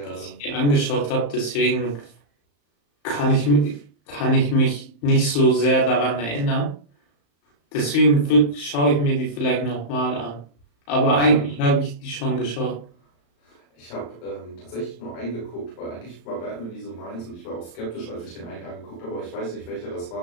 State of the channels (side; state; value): right; late; 35 ms